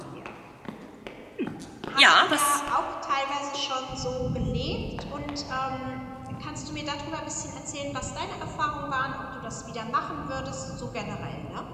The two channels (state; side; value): identical; both; correlation 1.00